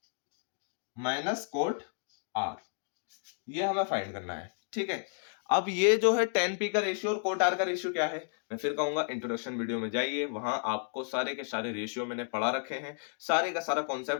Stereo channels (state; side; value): silent; right; 56 dB below the other